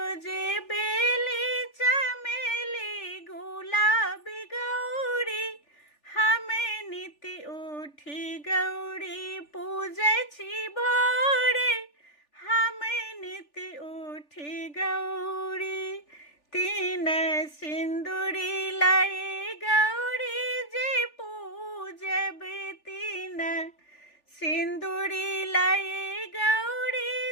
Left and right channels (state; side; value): late; right; 3.4 ms